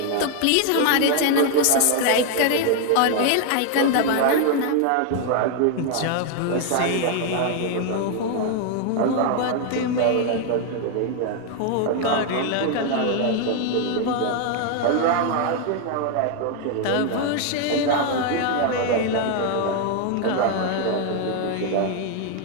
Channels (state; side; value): different; both; correlation 0.00